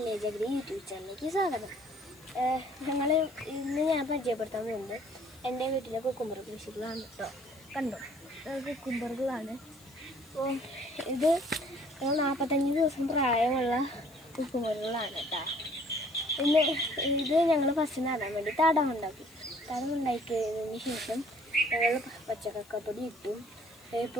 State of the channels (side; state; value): left; noise; hiss, 25 dB below the sound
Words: അഗ്രി യൂട്യൂബ് ചാനലിലേക്ക് സ്വാഗതം. ഇന്ന് ഞാൻ പരിചയപ്പെടുത്താൻ പോകുന്നത് എൻ്റെ വീട്ടിലെ കുക്കുംബർ കൃഷികളാണ് കേട്ടോ. കണ്ടോ, കുക്കുംബറുകളാണ്. അപ്പോൾ ഇത് 45 ദിവസം പ്രായമുള്ള കുക്കുംബറുകളാണ് കേട്ടോ. ഇത് ഞങ്ങൾ ഫസ്റ്റ് നടാൻ വേണ്ടി തടമുണ്ടാക്കി കഴിഞ്ഞതിന് ശേഷം ഞങ്ങൾ പച്ചക്കപ്പൊടി ഇട്ടു,